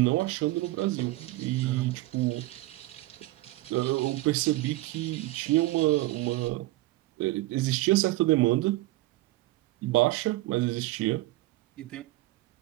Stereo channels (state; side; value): quieter; left; 18.6 dB